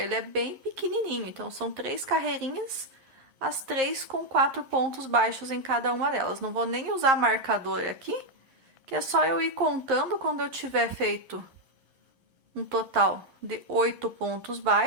é bem pequenininho, então são 3 carreirinhas, as 3 com 4 pontos baixos em cada uma delas. Não vou nem usar marcador aqui, que é só eu ir contando quando eu tiver feito um total de 8 pontos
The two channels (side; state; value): left; late; 11 ms